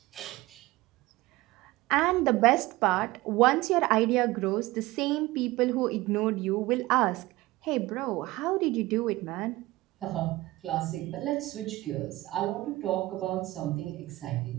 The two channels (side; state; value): left; quieter; 19.1 dB